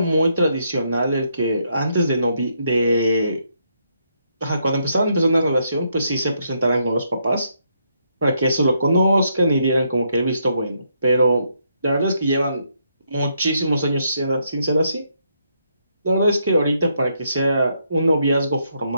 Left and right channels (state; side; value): inverted; both; correlation -0.76